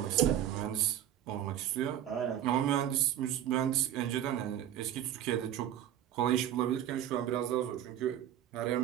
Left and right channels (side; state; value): left; quieter; 11.0 dB